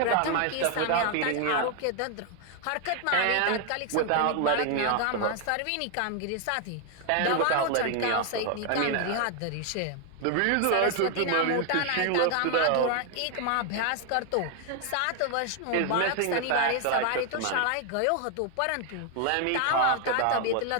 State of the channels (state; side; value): different; both; correlation 0.01